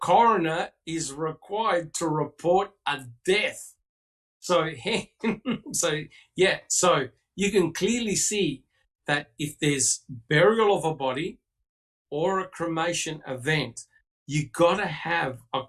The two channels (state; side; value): identical; both; correlation 1.00